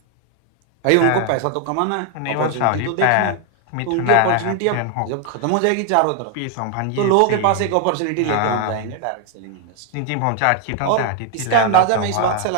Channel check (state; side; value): different; both; correlation 0.00